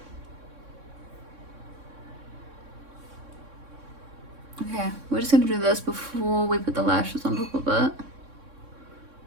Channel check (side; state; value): left; late; 3.6 ms